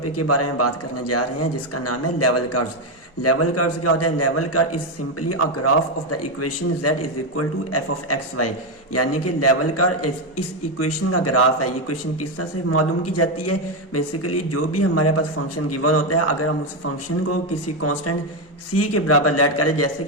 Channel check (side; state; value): both; normal; correlation 0.07